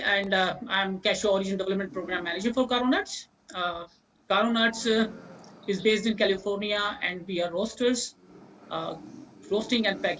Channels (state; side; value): identical; both; correlation 1.00